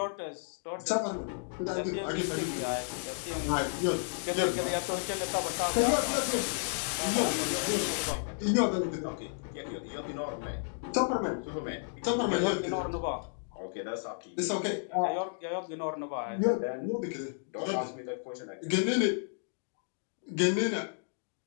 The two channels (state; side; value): silent; right; digital silence